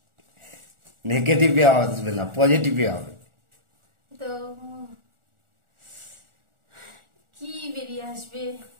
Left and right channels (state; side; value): late; left; 1.4 ms